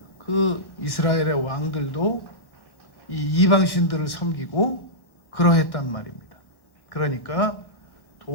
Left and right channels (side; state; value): right; late; 1.1 ms